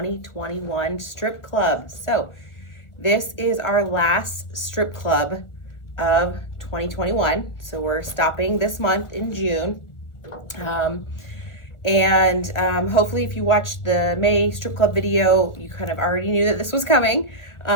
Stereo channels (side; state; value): right; late; 1.4 ms